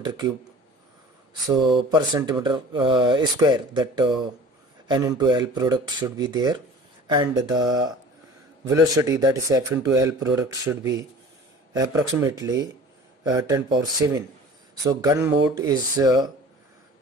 cube, so per centimeter square, that N into L product should be there, and the velocity, that is F into L product, should be approximately 10 power 7. So gun mode is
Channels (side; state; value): both; normal; correlation 0.44